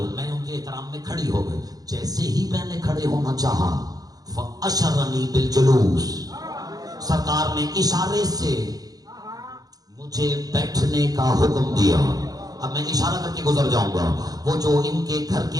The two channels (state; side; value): late; left; 0.18 ms